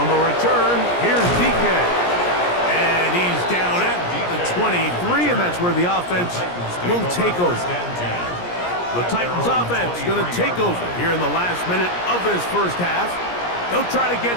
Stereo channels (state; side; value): late; right; 17 ms